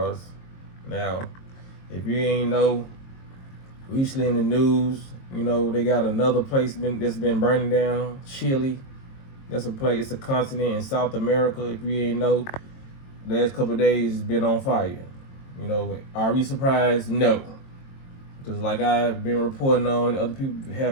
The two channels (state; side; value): late; right; 22 ms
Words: Now, if you ain't know, recently in the news, they got another place that's been burning down, Chile. That's a place, it's a continent in South America. If you ain't know, the last couple of days it's been on fire. Are we surprised? No. Just like I've been reporting on, other people